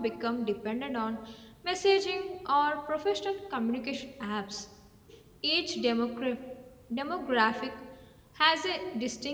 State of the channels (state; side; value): identical; both; correlation 1.00